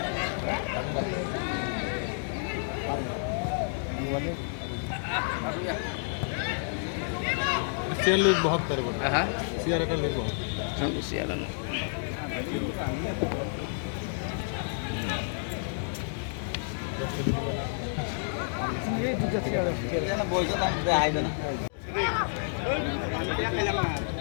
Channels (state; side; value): silent; right; digital silence